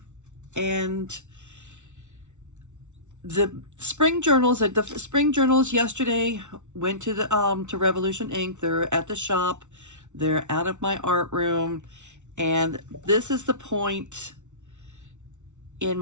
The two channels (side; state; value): left; late; 0.84 ms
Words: and the spring journals yesterday went to the to Revolution Ink. They're at the shop. They're out of my art room, and this is the point in